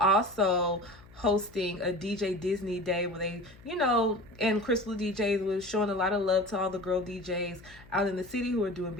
hosting a DJ Disney Day where they, you know, and Crystal DJs was showing a lot of love to all the girl DJs out in the city who are doing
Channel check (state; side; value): noise; left; hum, 23 dB below the sound